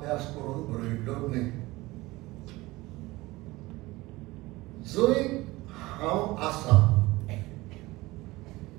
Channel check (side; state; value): left; quieter; 20.3 dB